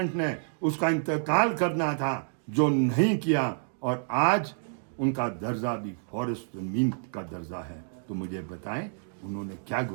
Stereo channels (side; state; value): left; silent; digital silence